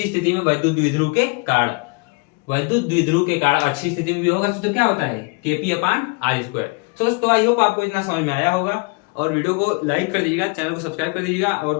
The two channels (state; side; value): quieter; right; 30.9 dB